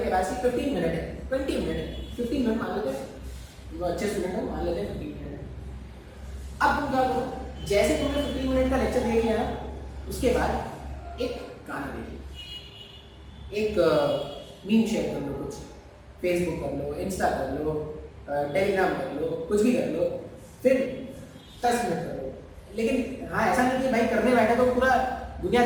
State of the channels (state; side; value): identical; both; correlation 1.00